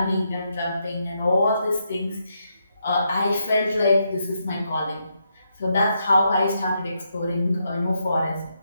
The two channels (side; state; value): both; inverted; correlation -0.81